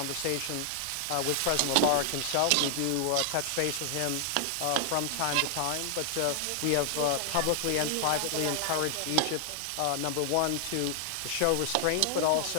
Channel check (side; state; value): both; different; correlation 0.00